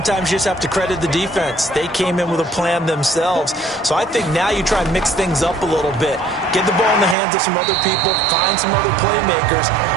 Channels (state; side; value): drops out; left; at 7.2 s